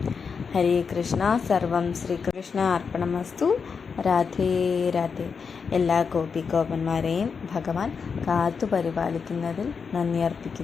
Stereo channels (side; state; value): right; quieter; 5.7 dB